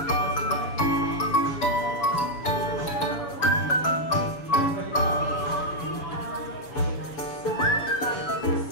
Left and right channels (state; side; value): late; right; 7.0 ms